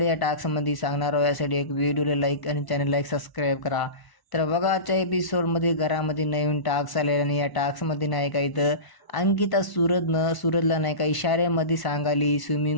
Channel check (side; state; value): right; late; 1.0 ms